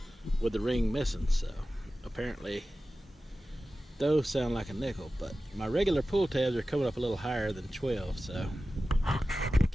with the ring missing. So apparently those sound like a nickel, but my regular pull tabs are coming up a little higher than 12, so we'll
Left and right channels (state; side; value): normal; both; correlation 0.95